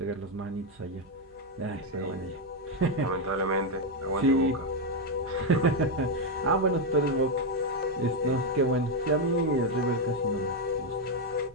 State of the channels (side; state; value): both; normal; correlation 0.03